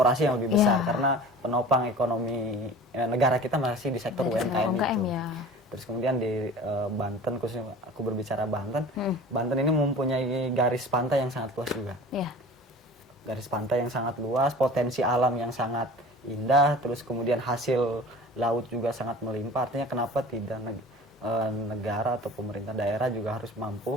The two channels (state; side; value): normal; both; correlation 0.40